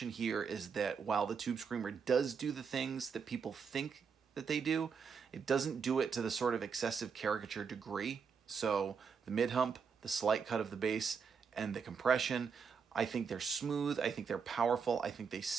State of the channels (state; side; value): quieter; left; 6.1 dB